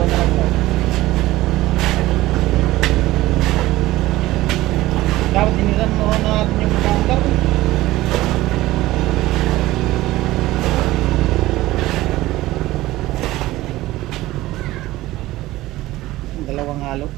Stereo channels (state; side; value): quieter; left; 17.3 dB